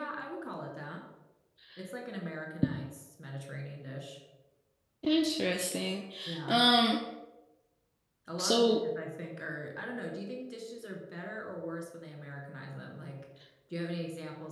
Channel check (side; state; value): both; identical; correlation 1.00